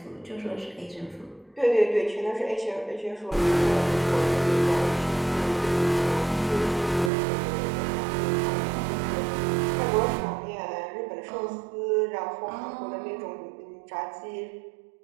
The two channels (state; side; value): drops out; left; at 7.1 s